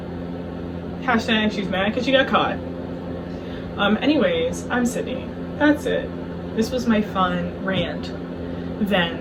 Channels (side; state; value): both; identical; correlation 1.00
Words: Hashtag she's mad because she got caught. Anyways, I'm Sydney. That's it. This was my fun rant,